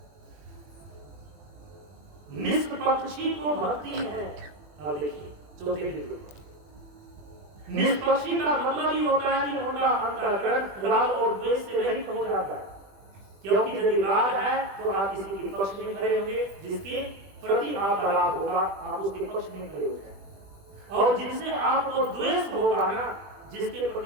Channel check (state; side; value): late; left; 21 ms